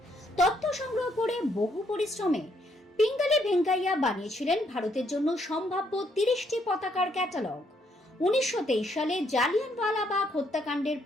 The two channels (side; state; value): both; normal; correlation 0.72